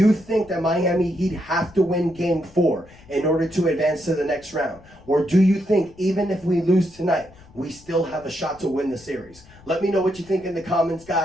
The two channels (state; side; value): noise; left; rumble, 24 dB below the sound